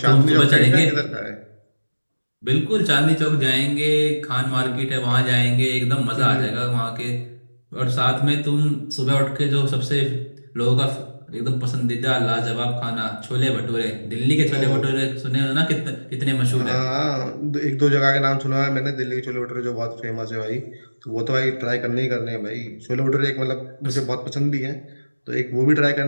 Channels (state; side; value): inverted; both; correlation -1.00